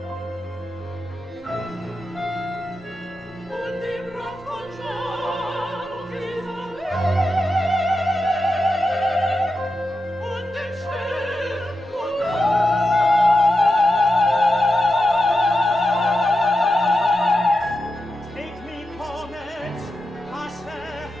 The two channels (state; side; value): normal; both; correlation 0.89